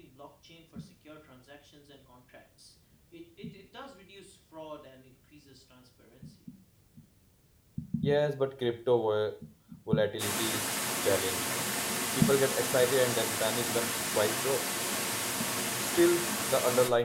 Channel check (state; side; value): identical; both; correlation 1.00